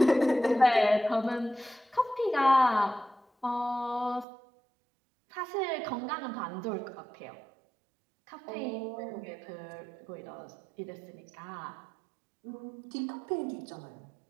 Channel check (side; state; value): left; drops out; at 4.2 s